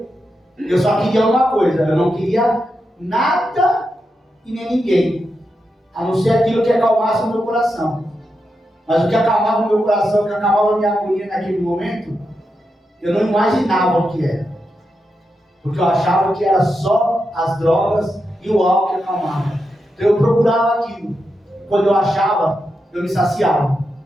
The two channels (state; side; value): normal; both; correlation 0.87